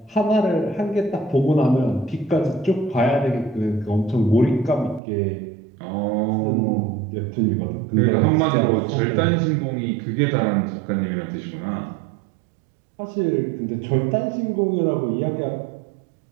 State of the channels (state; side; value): drops out; left; at 5.0 s